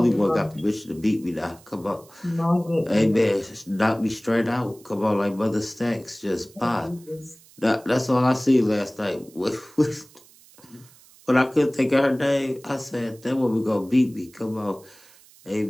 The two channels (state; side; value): noise; right; hiss, 26 dB below the sound